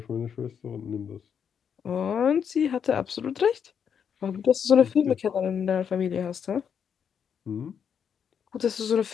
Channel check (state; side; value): quieter; right; 7.5 dB